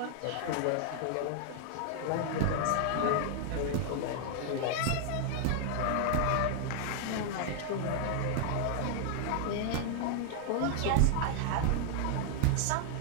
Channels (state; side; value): different; both; correlation 0.00